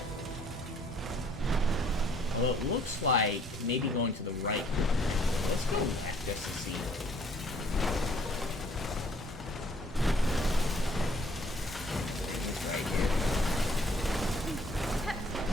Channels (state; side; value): normal; both; correlation 0.60